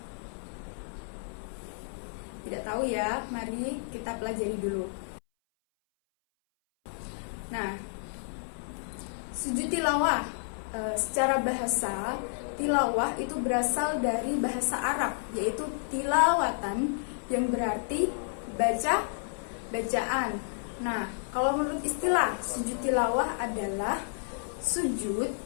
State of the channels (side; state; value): right; silent; 57 dB below the other